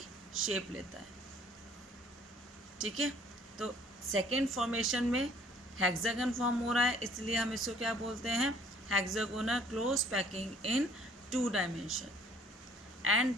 शेप लेता है। ठीक है, तो सेकेंड फॉर्मेशन में हेक्सागन फॉर्म हो रहा है, इसलिए हम इसको क्या बोलते हैं, hexagonal close packing in 2 dimension.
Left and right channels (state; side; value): normal; both; correlation 0.57